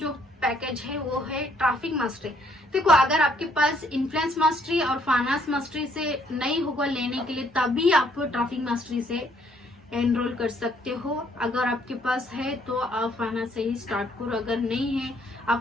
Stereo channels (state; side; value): normal; both; correlation 0.66